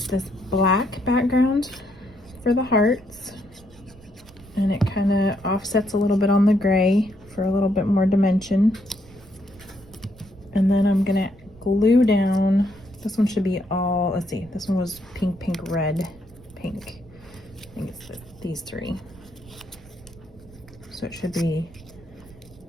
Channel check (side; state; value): right; noise; rumble, 23 dB below the sound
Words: this black background for the hearts. And it kind of offsets a little bit on the gray for a little bit more dimension. And then I'm gonna glue down, this one should be all, let's see, this one was pink, pink, red, pink. I think it's these 3. So it should be